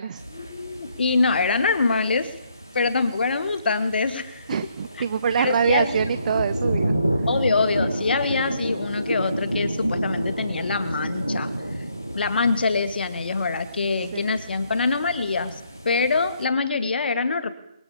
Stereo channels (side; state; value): both; inverted; correlation -0.71